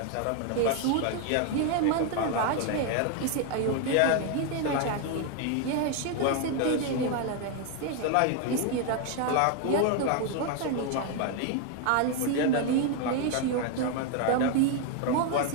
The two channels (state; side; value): different; both; correlation 0.01